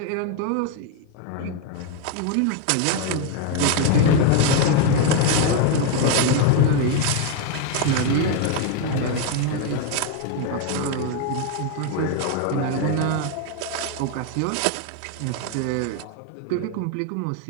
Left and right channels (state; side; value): different; both; correlation 0.01